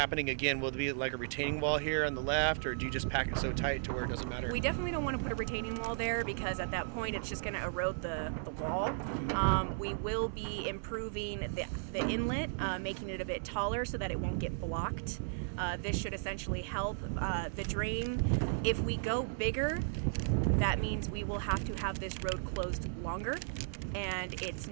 again? Will it be like a retaining wall here on the left, or do you just pack it so tight to where it doesn't matter? We definitely don't want to put a retaining wall there, because at that point it's just going to erode the wall. We will be improving the inlet, making it a bit taller so that it won't get blocked. This should essentially help the drain. If we go bigger, that means we will have to have this road closed longer, and it's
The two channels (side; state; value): left; silent; digital silence